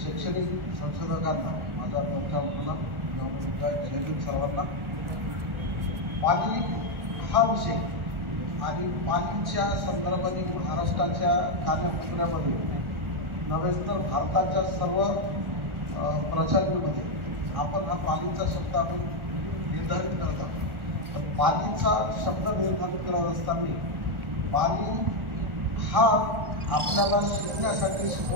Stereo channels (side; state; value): left; late; 1.4 ms